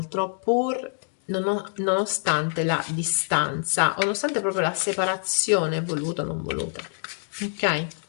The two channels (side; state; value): right; silent; 61 dB below the other